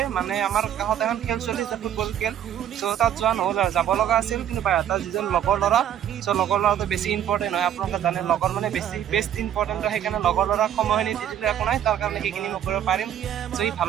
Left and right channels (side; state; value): left; quieter; 10.4 dB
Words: মানে আমাৰ কাষত এখন খেল চলি আছে, ফুটবল খেল। চ' তাত যোৱা নহ'ল আৰু, যাব লগা আছিল। কিন্তু বাইহাটাৰ যিজন লগৰ ল'ৰা, চ' লগৰ ল'ৰাটো বেছি ইম্পৰ্টেণ্ট হয়, আপোনালোকে জানে লগৰ মানে বেষ্ট ইম্পৰ্টেণ্ট হয়। সেইকাৰণে লগৰ ল'ৰাক সময়খিনি দি দিলে একো নাই, তাৰ কাৰণে সেইখিনি মই কৰিব পাৰিম। চ' সি